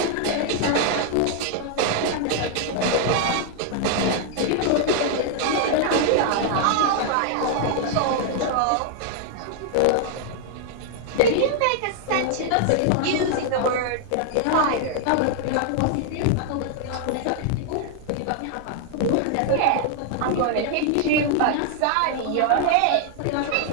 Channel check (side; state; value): both; different; correlation 0.00